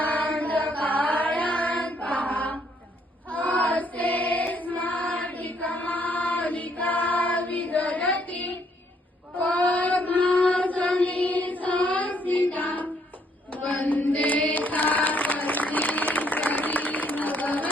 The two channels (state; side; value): normal; both; correlation 0.69